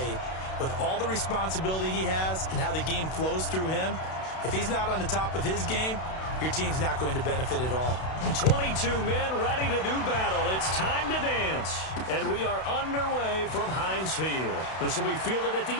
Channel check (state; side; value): late; right; 32 ms